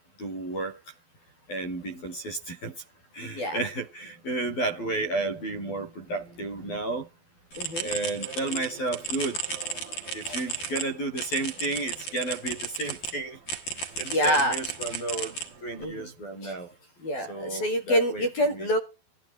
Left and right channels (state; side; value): late; right; 12 ms